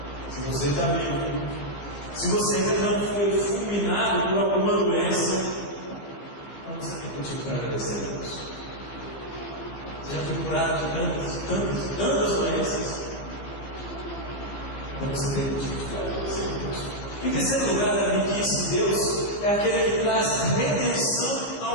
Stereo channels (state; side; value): late; right; 15 ms